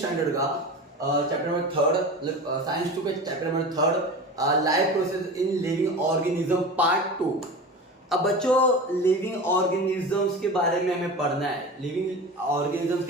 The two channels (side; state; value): both; normal; correlation 0.31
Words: का चैप्टर नंबर थर्ड, साइंस 2 के chapter number third, life process in living organism part 2। अब बच्चों, लिविंग ऑर्गेनिजम्स के बारे में हमें पढ़ना है, लिविंग ऑर्गेनिजम्स